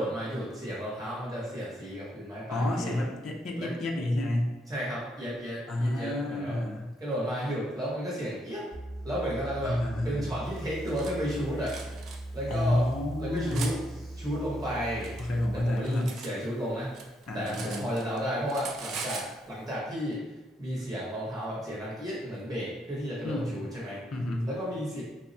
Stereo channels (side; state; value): both; normal; correlation 0.76